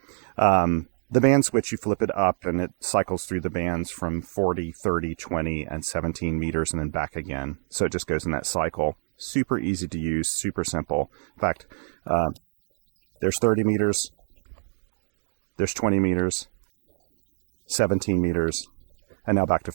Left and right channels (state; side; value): silent; left; digital silence